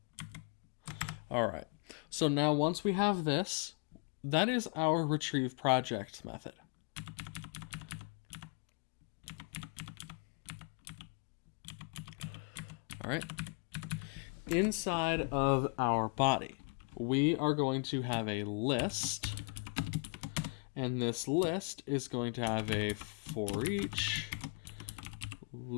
All right, so now once we have this, that is our retrieve project method. All right, inside of our body, we are going to have a list, and this list is going to have a for each,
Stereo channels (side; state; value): right; quieter; 36.0 dB